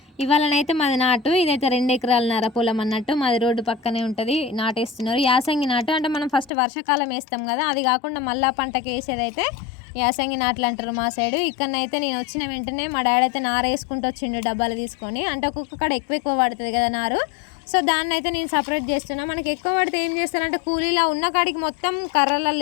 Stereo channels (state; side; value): drops out; right; at 6.5 s